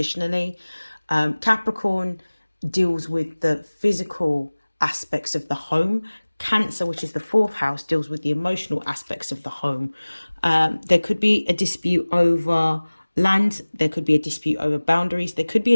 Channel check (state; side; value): inverted; both; correlation -1.00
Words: Capricorn deals with the physical aspects of the home. Cancer, which is the fourth house, deals with the emotional aspects of the home. There could be a dispute over land. There could be a dispute over boundaries. There could be